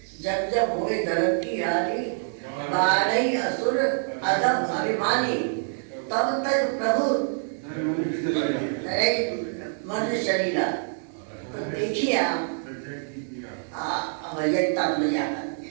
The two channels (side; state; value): left; silent; digital silence